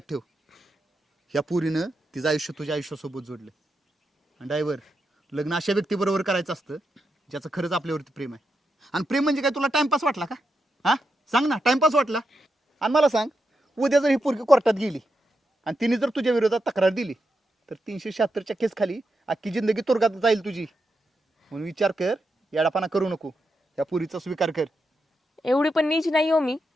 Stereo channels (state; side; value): normal; both; correlation 0.85